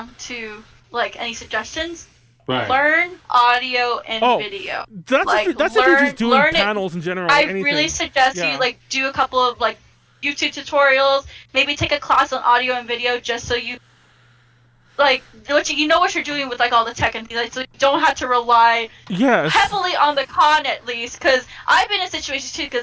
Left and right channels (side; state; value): both; identical; correlation 1.00